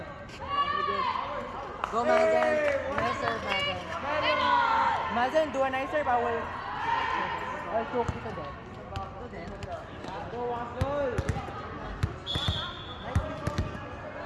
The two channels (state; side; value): identical; both; correlation 1.00